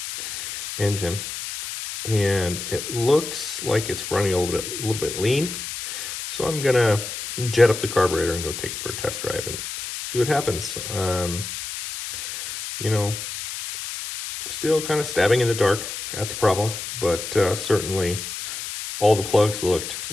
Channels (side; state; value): left; noise; hiss, 7 dB below the sound